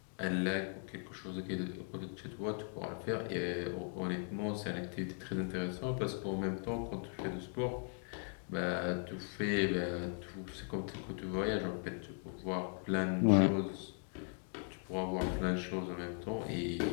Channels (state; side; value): silent; right; 52 dB below the other